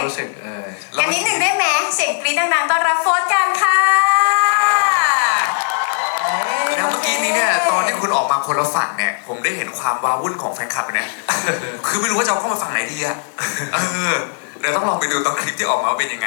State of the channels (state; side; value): silent; right; digital silence